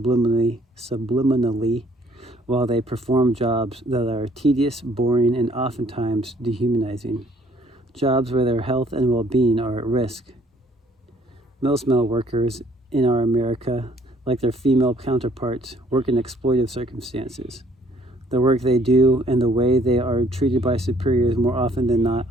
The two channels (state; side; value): normal; both; correlation 0.61